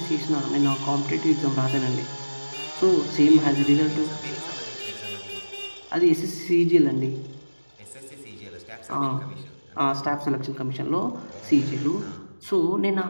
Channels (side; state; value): both; inverted; correlation -1.00